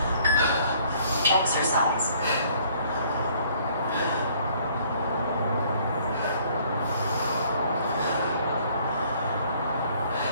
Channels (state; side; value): inverted; both; correlation -0.60